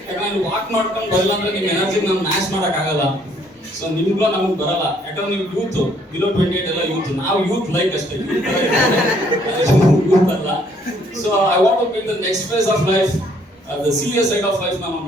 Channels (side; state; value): both; normal; correlation 0.65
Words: ಯಾಕಂದ್ರೆ ವಾಕ್ ಮಾಡ್ಕೊಂಡು ಬರಲ್ಲ ಅಂದ್ರೆ ನಿಮ್ಮ ಎನರ್ಜಿ ನಾನು ಮ್ಯಾಚ್ ಮಾಡಕ್ ಆಗಲ್ಲ. ಸೊ ನಿಮ್ಗೂ ನಮ್ಗೆ ಬರಲ್ಲ, ಯಾಕಂದ್ರೆ ನೀವು ಯೂತ್, ಬಿಲೋ 28 ಎಲ್ಲ ಯೂತ್. ನಾವು ಯೂತ್ ಲೈಕ್ ಅಷ್ಟೇ, ಯೂತ್ ಅಲ್ಲ. So I want to be the next phase of life, the serious side of life ನಾನು